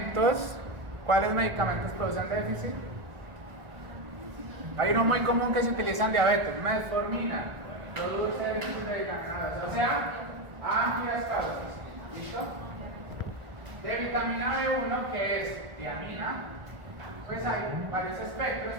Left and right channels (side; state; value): left; late; 1.5 ms